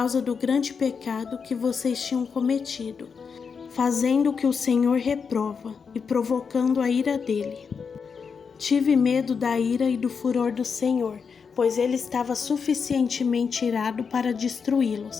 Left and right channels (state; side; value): quieter; right; 5.9 dB